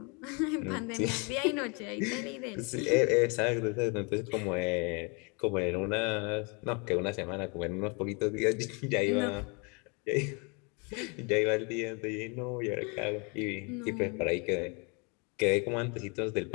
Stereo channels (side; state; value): right; quieter; 32.5 dB